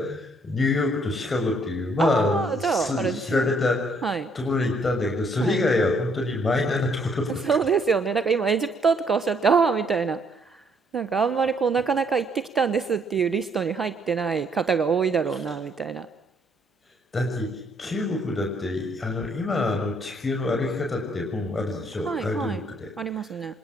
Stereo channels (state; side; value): normal; both; correlation 0.68